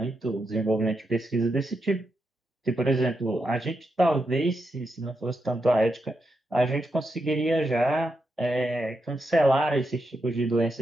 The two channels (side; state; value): both; normal; correlation 0.84